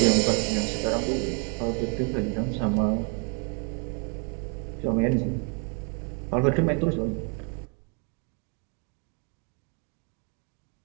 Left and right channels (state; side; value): quieter; left; 38.3 dB